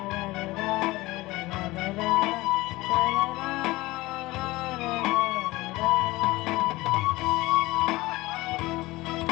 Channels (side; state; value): right; quieter; 19.9 dB